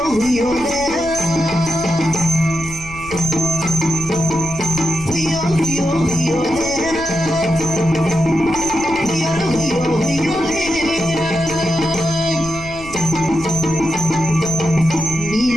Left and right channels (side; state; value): left; noise; rumble, 15 dB below the sound